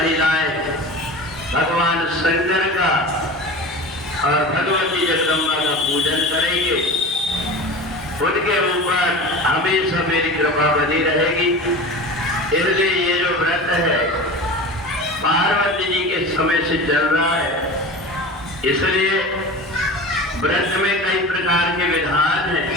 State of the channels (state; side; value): normal; both; correlation 0.33